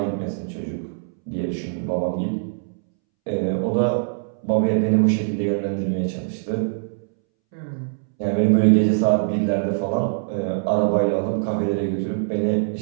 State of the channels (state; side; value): silent; left; 64 dB below the other